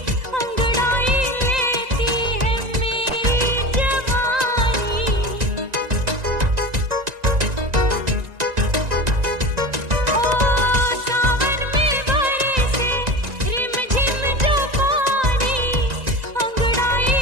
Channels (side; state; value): left; late; 1.9 ms